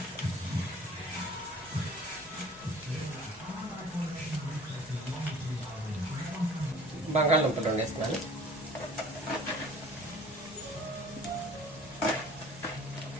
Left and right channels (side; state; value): both; normal; correlation 0.48